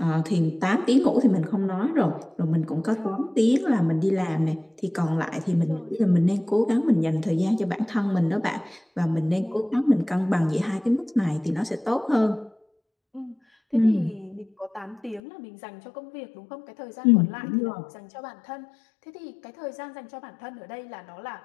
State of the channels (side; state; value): right; drops out; at 15.2 s